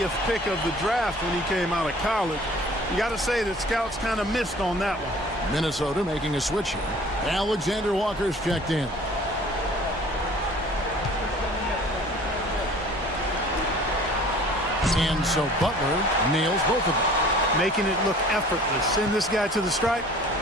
pick of the draft when he came out of college. You got to say that scouts kind of missed on that one. Minnesota making a switch here. Alexander Walker's checked in. And so Butler nails both of them. Making it look effortless. Send this guy to the stripe.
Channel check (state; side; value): normal; both; correlation 0.49